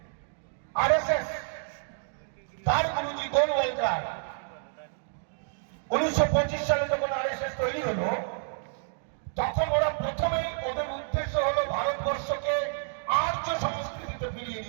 আরএসএস তার গুরুজি গোলওয়ালকার 1925 সালে যখন আরএসএস তৈরি হলো, তখন ওরা প্রথমেই ওদের উদ্দেশ্য হলো ভারতবর্ষকে আর্য সংস্কৃতিতে ফিরিয়ে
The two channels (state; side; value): silent; left; digital silence